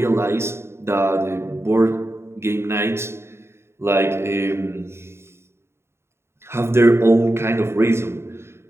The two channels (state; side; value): late; left; 0.12 ms